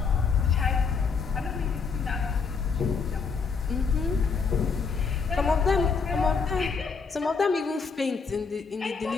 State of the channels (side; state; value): right; quieter; 5.3 dB